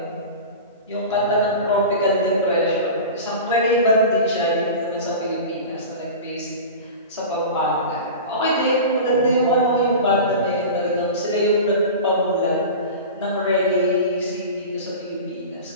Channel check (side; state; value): both; inverted; correlation -0.31